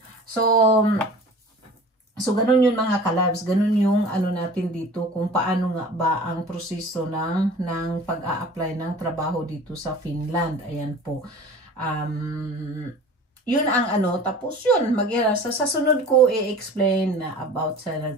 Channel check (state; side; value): normal; both; correlation 0.41